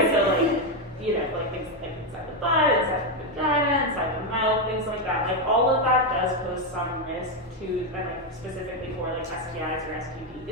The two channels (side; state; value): both; normal; correlation 0.06